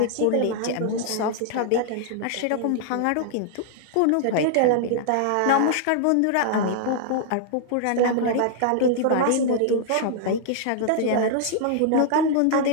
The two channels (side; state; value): both; different; correlation -0.01